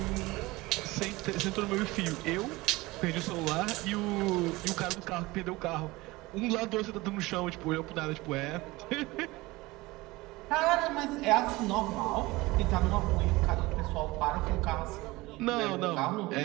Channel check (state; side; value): quieter; left; 21.0 dB